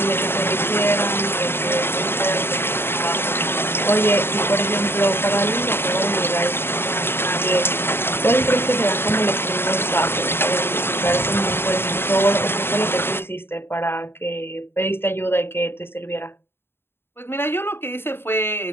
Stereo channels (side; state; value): right; late; 0.11 ms